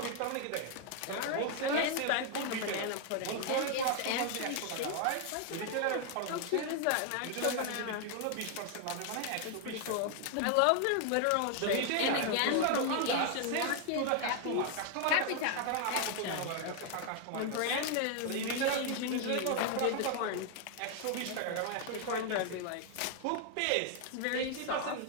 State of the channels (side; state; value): both; different; correlation 0.00